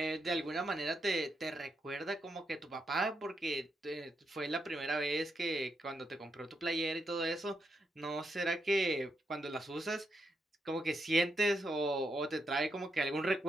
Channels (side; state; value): both; normal; correlation 0.82